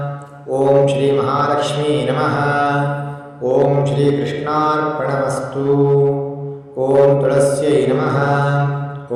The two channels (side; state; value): both; identical; correlation 1.00